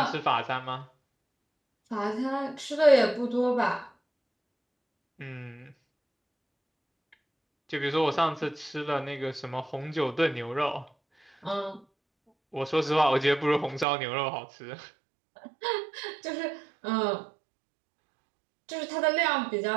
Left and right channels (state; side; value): drops out; left; at 13.9 s